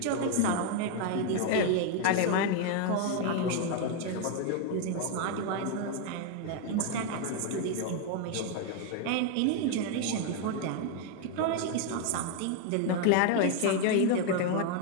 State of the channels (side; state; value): both; different; correlation 0.01